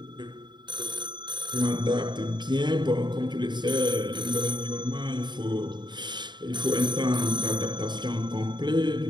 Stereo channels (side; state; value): left; late; 0.22 ms